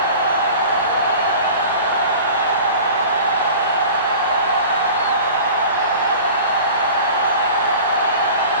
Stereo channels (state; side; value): inverted; both; correlation -0.40